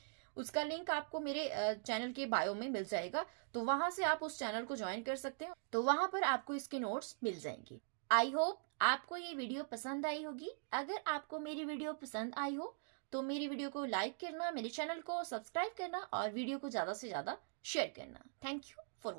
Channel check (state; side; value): silent; left; digital silence